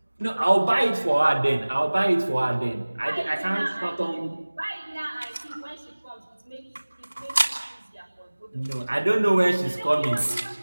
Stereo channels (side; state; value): both; inverted; correlation -1.00